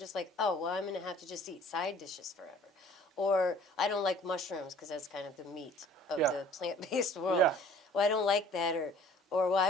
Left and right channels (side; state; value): both; normal; correlation 0.52